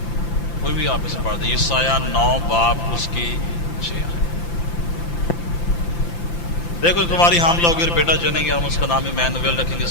کوئی بھی آپ اسے پڑھ دیں. یسایہ 9 باب اس کی 6 ہے. دیکھو تمہاری حاملہ ہوگی اور بیٹا جنیں گے، ہم اس کا نام ایمانویل رکھیں گے.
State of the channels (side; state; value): right; late; 5.9 ms